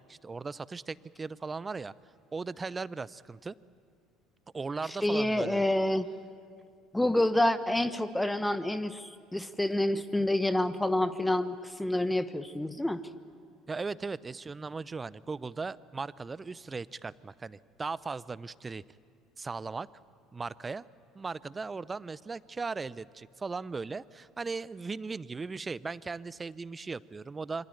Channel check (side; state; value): both; normal; correlation 0.94